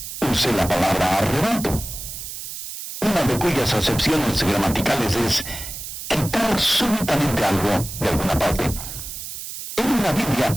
use la palabra arrebato, una de cuyas acepciones gramaticales es quitar recordar súbitamente algo de alguna parte. En la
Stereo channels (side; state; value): right; noise; hiss, 9 dB below the sound